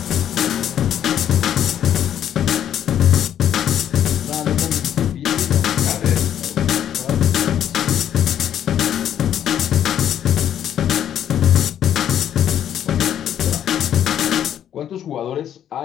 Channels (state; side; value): quieter; right; 10.1 dB